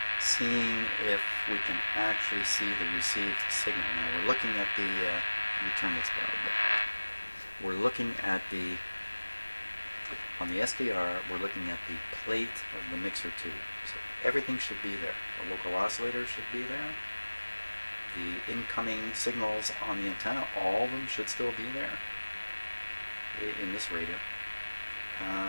seeing if we can actually see the received signal. Now we're looking at the, let me turn this down a bit. We're looking at on the SDR, we're looking at the plate of the mixer tube. So everything should be there. The local oscillator should be there. The incoming signals on the antenna, all of them should still be there in this radio.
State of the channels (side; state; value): both; inverted; correlation -1.00